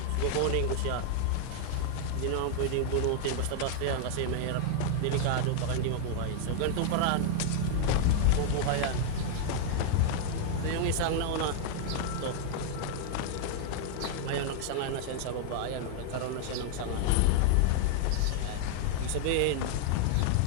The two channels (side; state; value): both; different; correlation 0.00